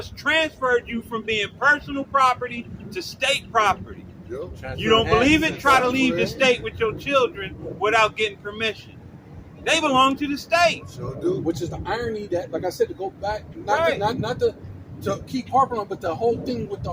transferred you from being personal property to state property. Yep. You don't believe it? Try to leave the state with your children without getting permission. They belong to the state. Sure do. Which is the irony that, like I said, to go back, Right. not to keep harping on, but the whole thing with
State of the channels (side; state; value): both; identical; correlation 1.00